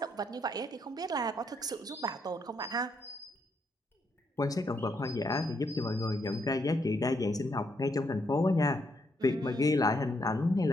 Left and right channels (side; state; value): both; normal; correlation 0.76